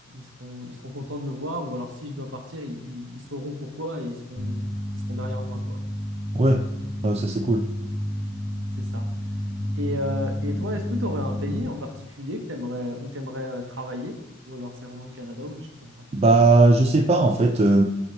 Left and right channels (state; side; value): normal; both; correlation 0.63